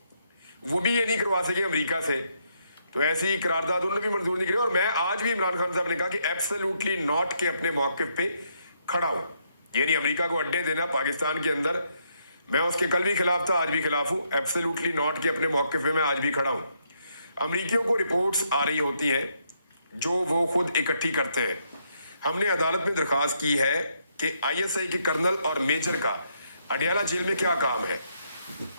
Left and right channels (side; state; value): both; inverted; correlation -0.75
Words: वो भी ये नहीं करवा सके अमेरिका से। तो ऐसी करारदाद उन्होंने भी मंजूर नहीं करी। और मैं आज भी इमरान खान साहब ने कहा कि एब्सोल्युटली नॉट के अपने मौक़िफ़ पे खड़ा हूँ। यानी अमेरिका को अड्डे देना पाकिस्तान के अंदर, मैं उसके कल भी खिलाफ था, आज भी खिलाफ हूँ। एब्सोल्युटली नॉट के अपने मौक़िफ़ पे मैं आज भी खड़ा हूँ। अमरीकियों को रिपोर्ट्स आ रही होती हैं जो वो खुद इकट्ठी करते हैं। हमने अदालत में दरख्वास्त की है कि ISI के कर्नल और मेजर का अडयाला जेल में क्या काम है।